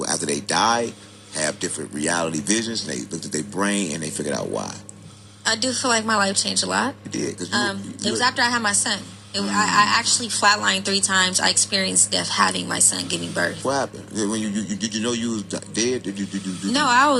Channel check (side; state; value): both; identical; correlation 1.00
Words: after they die have different reality visions. And they looked at their brain and they figured out why. I do feel like my life changed a lot. It did. It was after I had my son. I actually flatlined 3 times. I experienced death having my son giving birth. What happened? When did you know you was dead? No, I